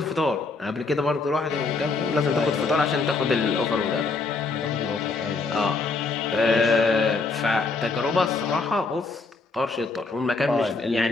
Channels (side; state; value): right; quieter; 4.0 dB